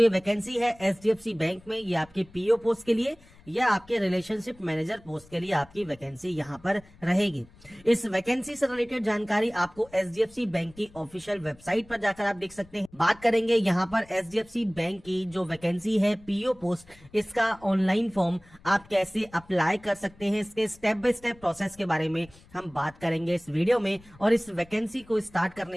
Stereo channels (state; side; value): noise; left; rumble, 25 dB below the sound